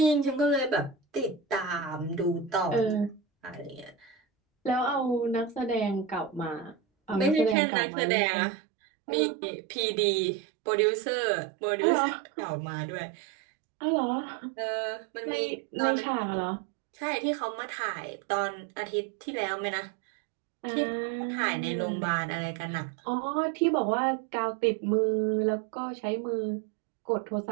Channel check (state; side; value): drops out; left; at 7.6 s